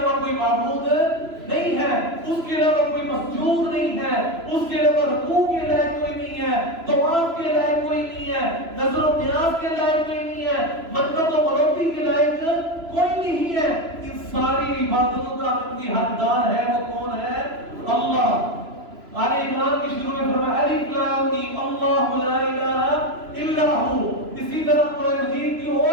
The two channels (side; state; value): left; late; 3.0 ms